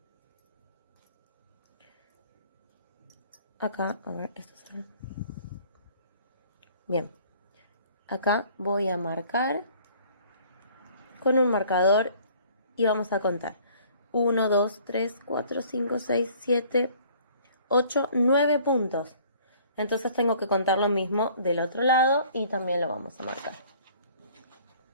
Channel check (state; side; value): inverted; both; correlation -0.55